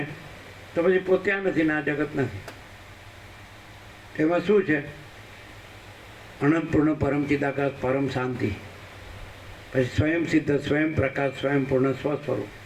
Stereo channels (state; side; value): identical; both; correlation 1.00